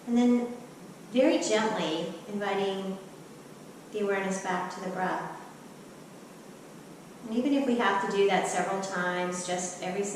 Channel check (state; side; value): identical; both; correlation 1.00